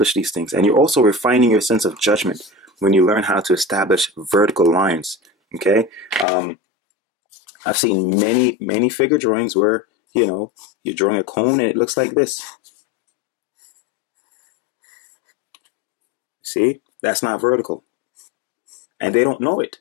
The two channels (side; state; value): right; drops out; at 6.2 s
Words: these things. And you're also refining your sense of judgment when you learn how to establish vertical lines. Okay, I've seen many figure drawings where, you know, you're drawing a cone and it looks like this. See, that's not vertical. And they don't know it.